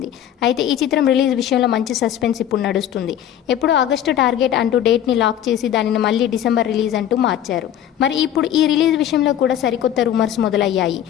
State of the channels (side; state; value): right; quieter; 10.7 dB